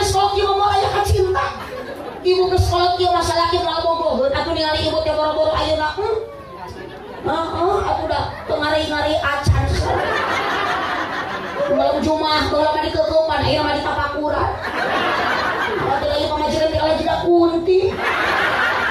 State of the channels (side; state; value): both; identical; correlation 1.00